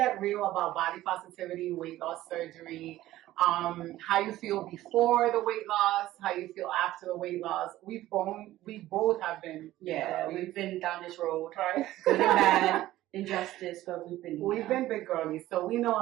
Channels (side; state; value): left; quieter; 15.2 dB